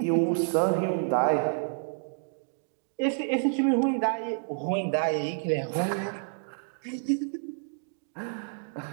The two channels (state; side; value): silent; left; digital silence